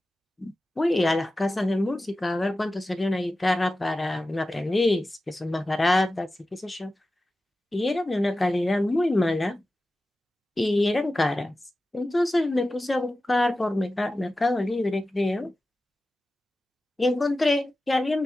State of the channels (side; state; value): both; normal; correlation 0.94